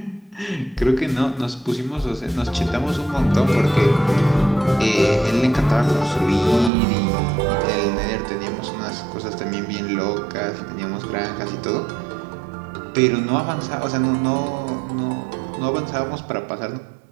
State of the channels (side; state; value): left; drops out; at 6.7 s